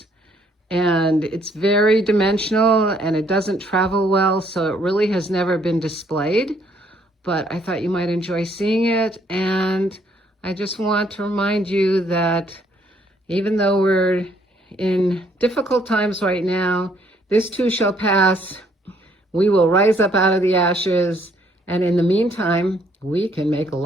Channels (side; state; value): both; normal; correlation 0.66